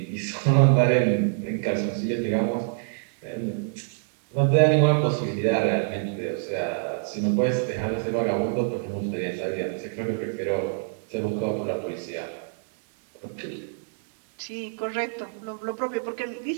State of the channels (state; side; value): silent; left; digital silence